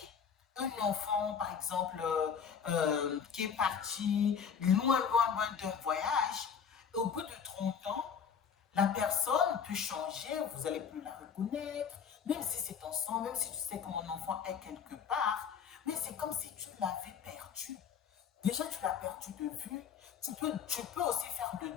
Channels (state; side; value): quieter; right; 7.1 dB